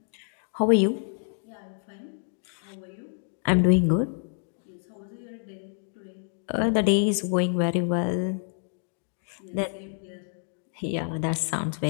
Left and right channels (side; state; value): right; silent; 57 dB below the other